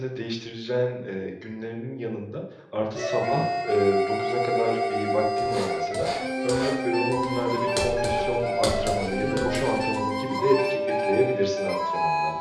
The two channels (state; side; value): identical; both; correlation 1.00